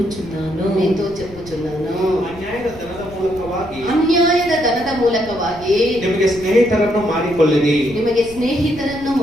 ಅನ್ಯಾಯದ ಧನದ ಮೂಲಕವಾಗಿ ನಿಮಗೆ ಸ್ನೇಹಿತರನ್ನು ಮಾಡಿಕೊಳ್ಳಿರಿ.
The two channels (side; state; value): left; noise; rumble, 18 dB below the sound